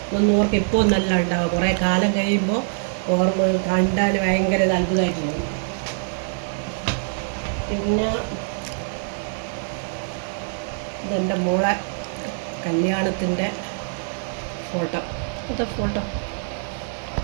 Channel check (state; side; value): silent; left; 63 dB below the other